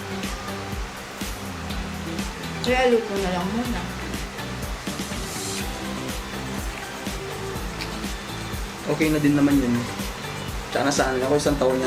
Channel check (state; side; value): identical; both; correlation 1.00